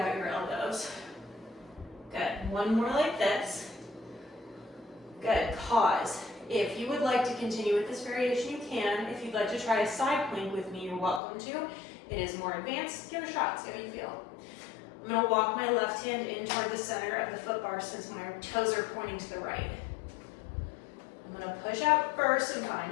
your elbows. Good. 1 more like this. Good. Pause. If you would like to continue with this variation, you can. If you'd like to try a side plank with me, you're welcome to. It is more advanced. Give it a shot. See how you feel. I'm going to walk my left hand in toward the center of the foot bar since my toes are pointing to the right. I'm going to push out first and find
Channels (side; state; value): right; drops out; at 11.2 s